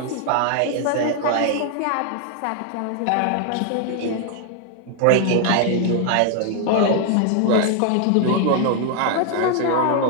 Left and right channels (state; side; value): different; both; correlation 0.00